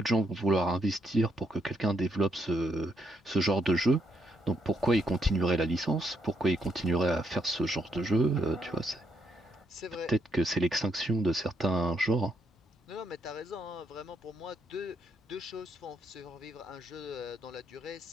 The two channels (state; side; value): normal; both; correlation 0.76